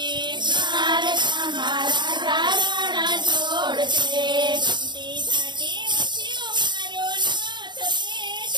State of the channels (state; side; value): late; left; 0.22 ms